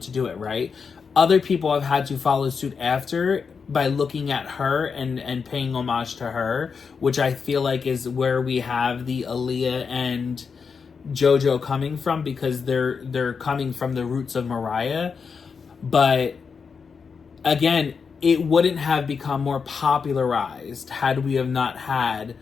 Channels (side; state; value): right; quieter; 5.7 dB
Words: do it, right? Other people have had to follow suit after by looking at her and paying homage to her, which I feel like is where we have the Aaliyah and Jojo coming from, because they're coming from the roots of Mariah. But again, it wouldn't have become more popularized had we have not had